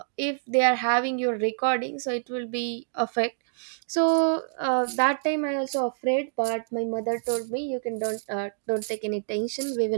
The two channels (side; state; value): left; silent; digital silence